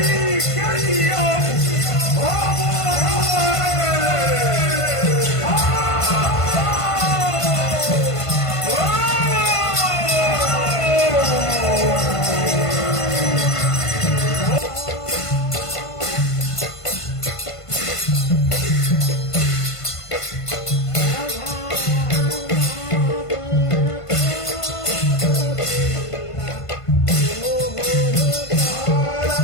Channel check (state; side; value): late; right; 1.5 ms